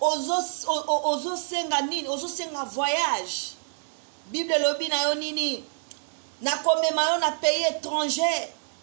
senga nini, ozo senga voyage. Bible lobi na yo nini? Na komema yo na pays étranger,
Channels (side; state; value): left; silent; digital silence